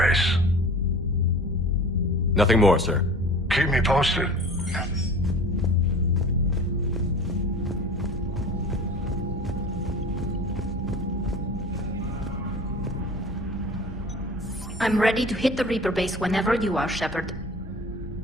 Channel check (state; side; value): normal; both; correlation 0.40